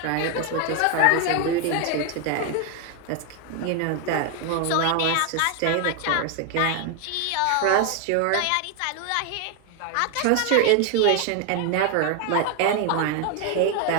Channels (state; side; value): different; both; correlation 0.01